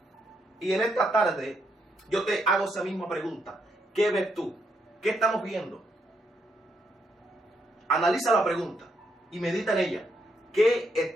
Y en esta tarde yo te hago esa misma pregunta: ¿qué ves tú? ¿Qué estamos viendo? Analiza la pregunta y medita en ella. ¿Qué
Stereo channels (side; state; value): both; normal; correlation 0.77